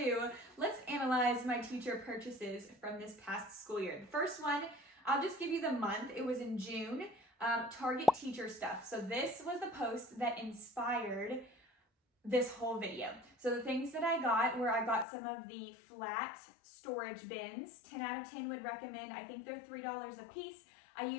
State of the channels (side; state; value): right; drops out; at 15.1 s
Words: let's analyze my teacher purchases from this past school year. The first one, I'll just give you the month. It was in June, Target teacher stuff. So this was the post that inspired this whole video. So the things that I got some of the flat storage bins. 10 out of 10 would recommend. I think they're $3 a piece. I